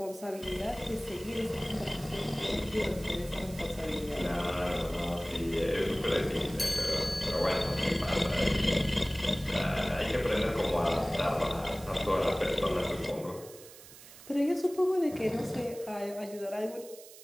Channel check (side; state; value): right; noise; hiss, 18 dB below the sound